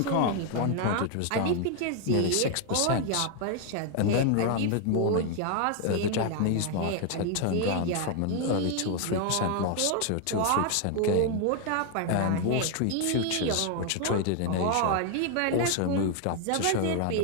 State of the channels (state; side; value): different; both; correlation 0.00